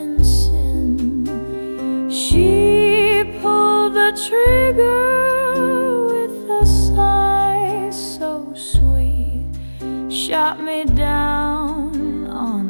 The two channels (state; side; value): inverted; both; correlation -1.00